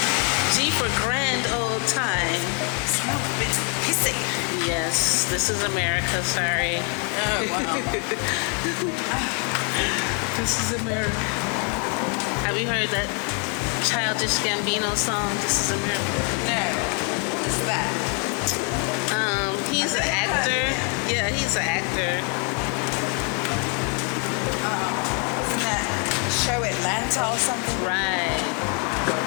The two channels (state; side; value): quieter; right; 37.8 dB